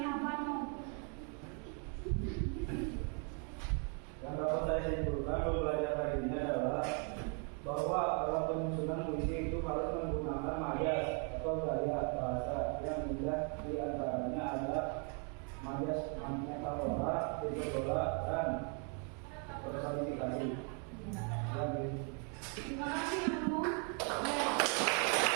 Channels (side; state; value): left; quieter; 39.0 dB